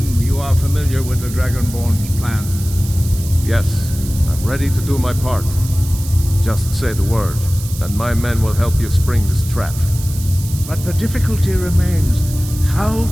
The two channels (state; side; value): noise; right; hiss, 13 dB below the sound